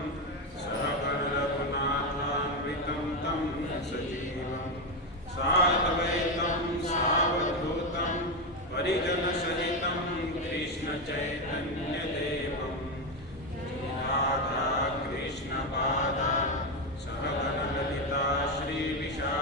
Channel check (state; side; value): normal; both; correlation 0.10